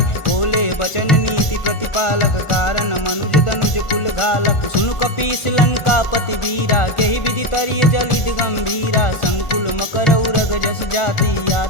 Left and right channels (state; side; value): late; right; 1.4 ms